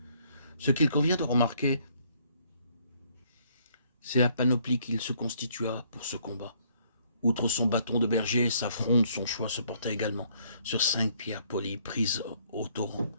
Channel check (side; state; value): both; inverted; correlation -0.65